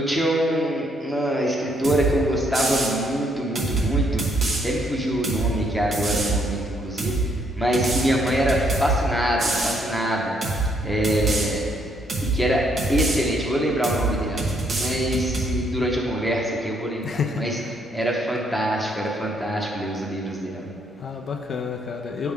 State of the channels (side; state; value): both; normal; correlation 0.71